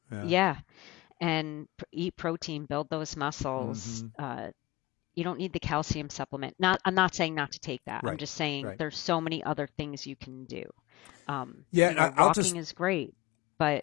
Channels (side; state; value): right; quieter; 20.1 dB